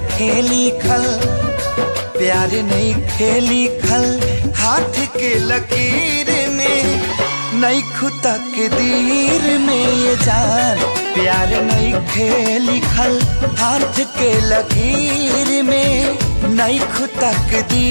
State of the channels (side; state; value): both; inverted; correlation -1.00